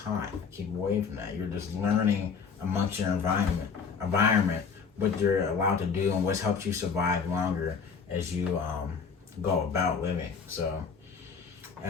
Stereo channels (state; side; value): quieter; right; 5.9 dB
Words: hot. Keep away from that. You're just learning amongst your environment, what you're allowed to do and what's helped you survive longer as you go about living. So,